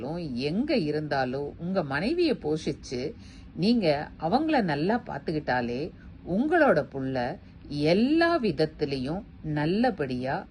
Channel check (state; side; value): identical; both; correlation 1.00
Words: எங்க இருந்தாலும் உங்க மனைவிய போஷிச்சு நீங்க அவங்கள நல்லா பாத்துக்கிட்டாலே உங்களோட புள்ள எல்லா விதத்திலையும் நல்லபடியா